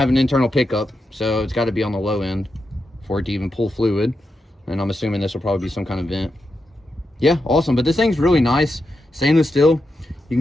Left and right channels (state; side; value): normal; both; correlation 0.87